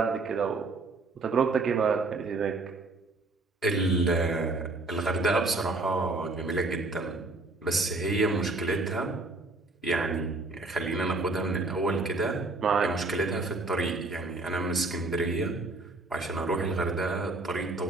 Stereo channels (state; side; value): quieter; left; 3.2 dB